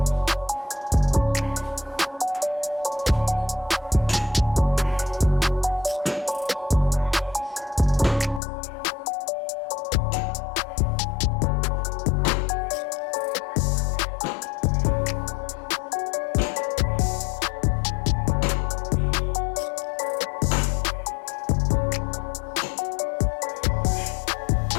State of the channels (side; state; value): right; drops out; at 8.4 s